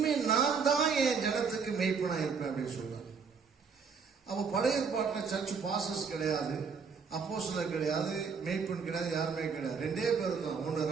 நான் தான் என் ஜனத்துக்கு மெய்ப்பனா இருப்பேன் அப்படின்னு சொல்றாரு. அப்போ பழைய ஏற்பாட்டில் சர்ச் பாசஸ் கிடையாது, அப்போஸ்தலர் கிடையாது, மெய்ப்பன் கிடையாது, யாருமே கிடையாது. 2 பேர் தான். ஒன்று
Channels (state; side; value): quieter; left; 5.6 dB